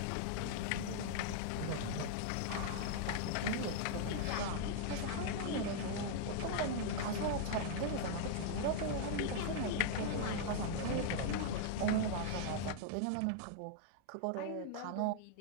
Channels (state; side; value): different; both; correlation -0.01